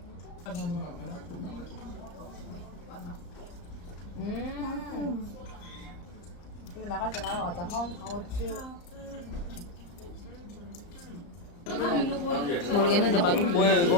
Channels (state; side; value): late; right; 34 ms